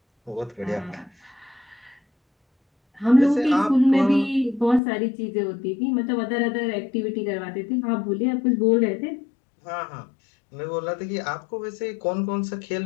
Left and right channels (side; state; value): right; drops out; at 4.8 s